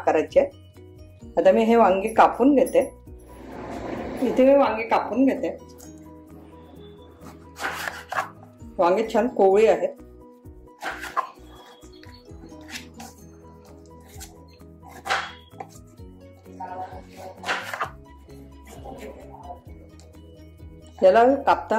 आता मी हे वांगी कापून घेते। इथे मी वांगी कापून घेते। वांगी छान कोवळी आहेत। याला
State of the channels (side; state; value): both; identical; correlation 1.00